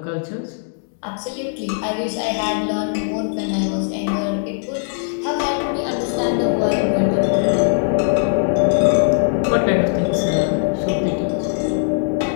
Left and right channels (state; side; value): silent; right; digital silence